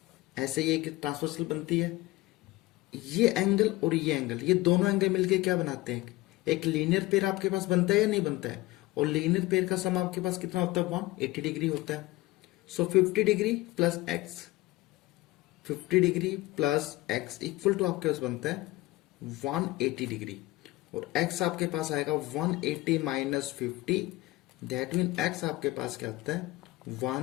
ऐसे ये एक ट्रांसवर्सल बनती है। ये एंगल और ये एंगल, ये दोनों एंगल मिलके क्या बनाते हैं? एक लीनियर पेयर आपके पास बनता है या नहीं बनता है? और लीनियर पेयर का सम आपके पास कितना होता है? 180 डिग्री होता है। So 50 degree plus x, 50 degree plus x equal to आपके पास बनता है 180 डिग्री। और x आपके पास आएगा 180 माइनस 50, दैट मीन x आपके पास क्या आता है?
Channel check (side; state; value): right; quieter; 19.4 dB